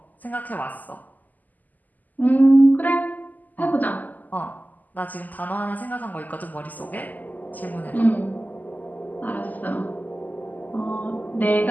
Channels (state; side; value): late; right; 0.082 ms